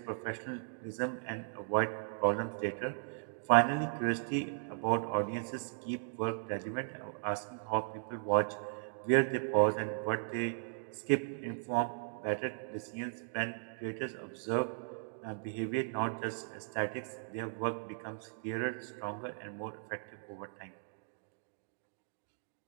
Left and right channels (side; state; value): left; silent; digital silence